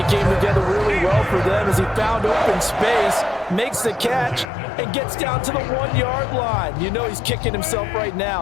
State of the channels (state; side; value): drops out; right; at 4.5 s